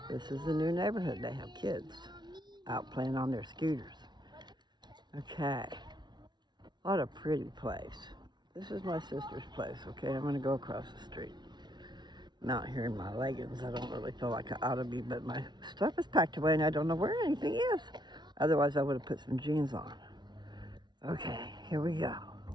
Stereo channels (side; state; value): left; late; 0.20 ms